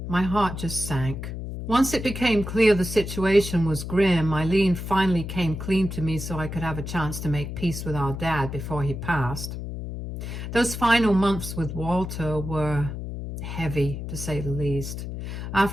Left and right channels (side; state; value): left; noise; hum, 7 dB below the sound